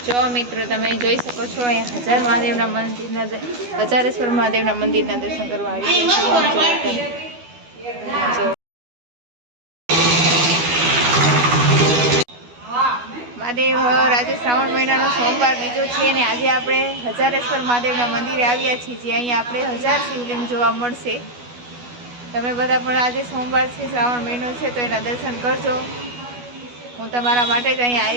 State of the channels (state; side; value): late; left; 12 ms